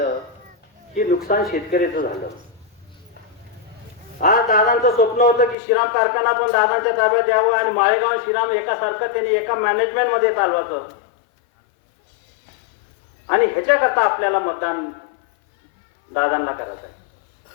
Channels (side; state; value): right; drops out; at 5.6 s